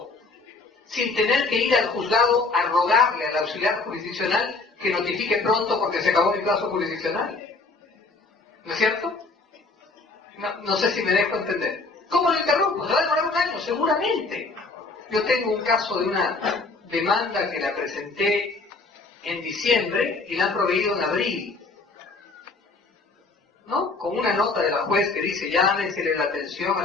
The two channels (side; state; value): right; quieter; 3.7 dB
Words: sin tener que ir al juzgado a rogarle al auxiliar jurisdiccional que notifique pronto porque se acabó el plazo jurisdiccional. ¿No es cierto? No sé si me dejo entender. ¿Cómo lo interrumpo? ¿Se va a demorar un año? Seguramente. Yo tengo un caso de una demanda que la presenté en diciembre y la han proveído en abril, ¿no? Con una nota de la juez que dice, llámesele la atención